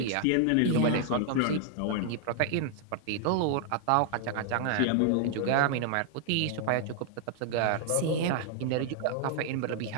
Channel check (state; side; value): different; both; correlation 0.00